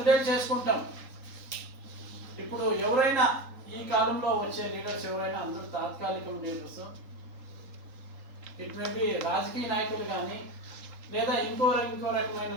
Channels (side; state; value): left; late; 3.8 ms